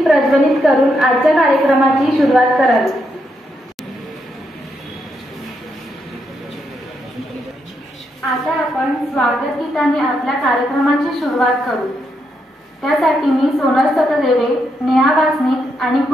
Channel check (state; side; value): normal; both; correlation 0.80